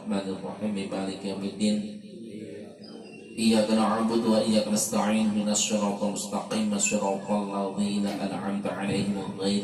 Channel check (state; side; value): identical; both; correlation 1.00